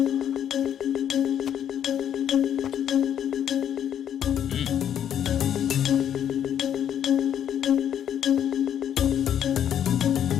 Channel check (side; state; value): right; quieter; 9.6 dB